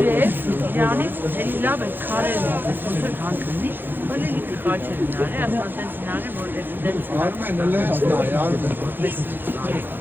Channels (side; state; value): left; late; 0.096 ms